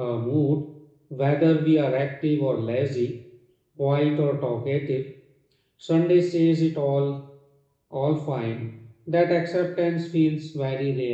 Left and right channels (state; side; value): identical; both; correlation 1.00